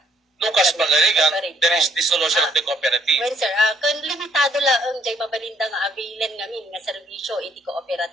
Lucas Pagarigan, there is dissolution of the cooperative. Well, sir, kung limitado lang ang jay mabalinda nga availan ngamin nga serbisyo iti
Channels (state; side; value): normal; both; correlation 0.65